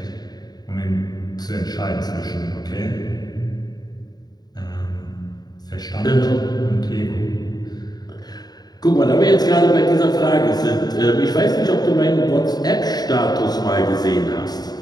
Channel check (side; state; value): right; late; 0.19 ms